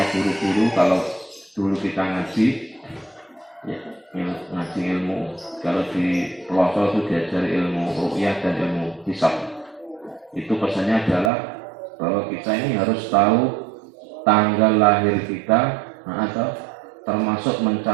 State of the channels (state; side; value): drops out; left; at 11.3 s